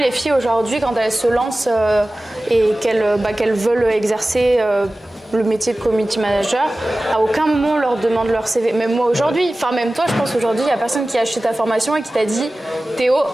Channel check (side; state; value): both; normal; correlation 0.97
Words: filles aujourd'hui, quand elles se lancent et qu'elles veulent exercer le métier de community manager, à aucun moment on leur demande leur CV. Même moi aujourd'hui, même toi, je pense aujourd'hui, il n'y a personne qui a acheté ta formation et qui t'a dit Théo.